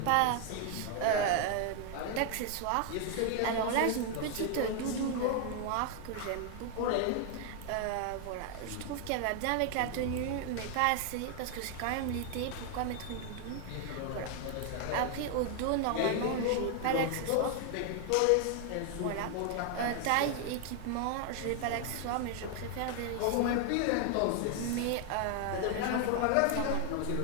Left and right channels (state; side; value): different; both; correlation 0.00